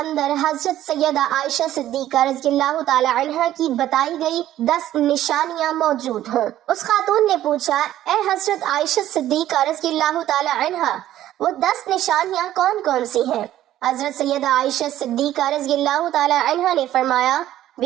حضرت سیدہ عائشہ صدیقہ رضی اللہ تعالی عنہ کی بتائی گئی 10 نشانیاں موجود ہوں۔ اس خاتون نے پوچھا اے حضرت عائشہ صدیقہ رضی اللہ تعالی عنہ وہ 10 نشانیاں کون کون سی ہیں؟ حضرت سیدہ عائشہ صدیقہ رضی اللہ تعالی عنہ نے فرمایا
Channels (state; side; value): quieter; left; 13.0 dB